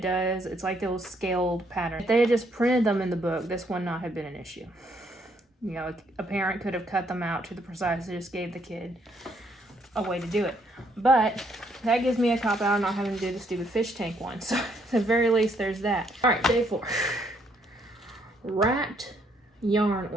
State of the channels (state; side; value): normal; both; correlation 0.70